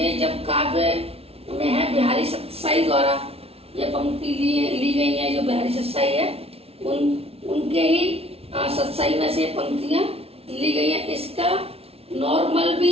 जब काव्य में है, बिहारी सत्साई द्वारा ये पंक्ति ली गई है। जो बिहारी सत्साई है उनके ही सत्साई में से पंक्तियां ली गई है। इसका नॉर्मल भी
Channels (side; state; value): left; late; 0.29 ms